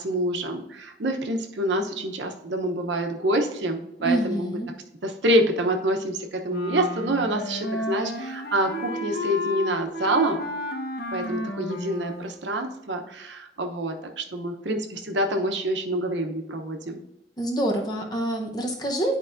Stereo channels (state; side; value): normal; both; correlation 0.31